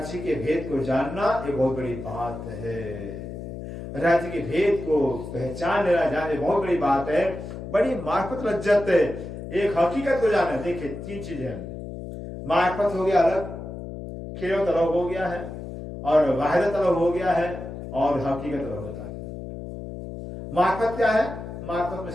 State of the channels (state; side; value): noise; left; hum, 9 dB below the sound